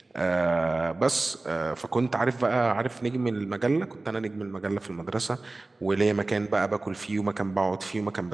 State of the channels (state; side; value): quieter; left; 3.1 dB